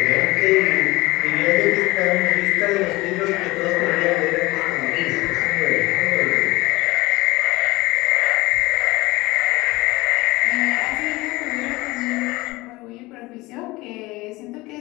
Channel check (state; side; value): quieter; right; 21.1 dB